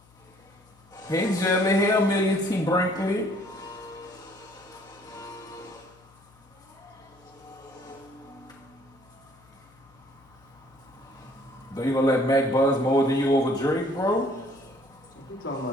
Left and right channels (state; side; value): noise; left; hum, 29 dB below the sound